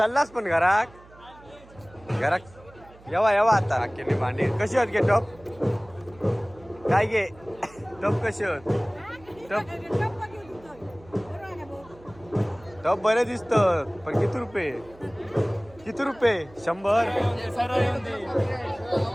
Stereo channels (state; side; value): noise; right; hum, 23 dB below the sound